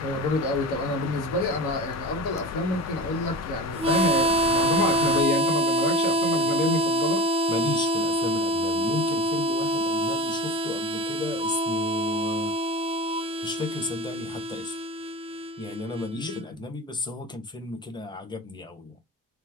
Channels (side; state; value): both; normal; correlation 0.31